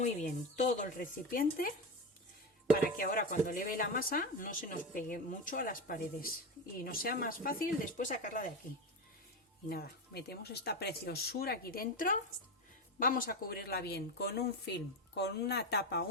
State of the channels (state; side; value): normal; both; correlation 0.18